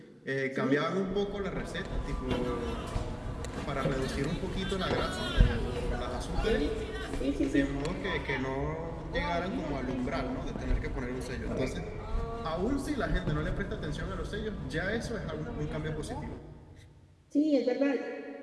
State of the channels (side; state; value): both; identical; correlation 1.00